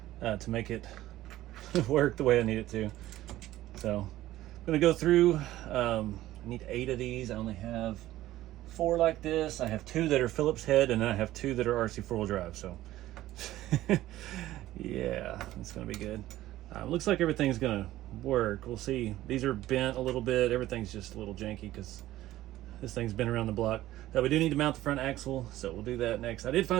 To make it work the way I need it to. So I'm gonna go through, I need 8 of these. I only have 4 like this. I have 2 that are Phillips head, and then I have 2 that are RC4 drive. So yeah, it's gonna be good. Looks like everything's gonna work. We'll see. These are bent a little bit. Everything's just a little janky because this thing's been around the block. Now we do need to mount the front axle, so we'll do that next. I did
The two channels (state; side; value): quieter; left; 15.0 dB